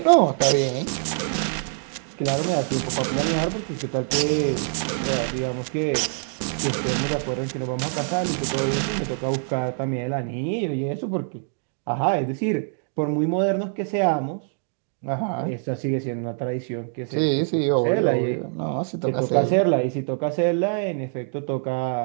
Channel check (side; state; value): left; silent; 62 dB below the other